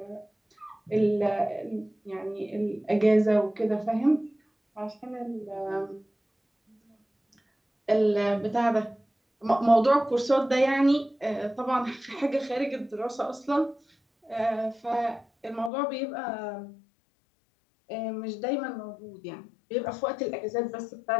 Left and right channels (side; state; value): right; drops out; at 15.7 s